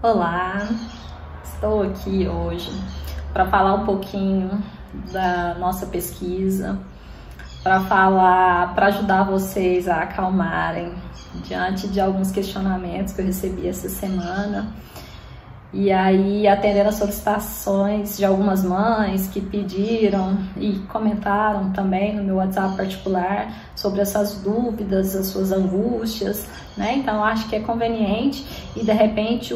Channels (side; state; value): both; identical; correlation 1.00